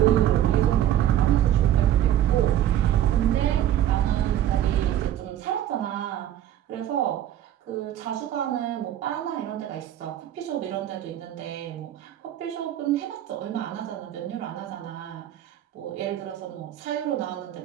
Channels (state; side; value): quieter; left; 11.7 dB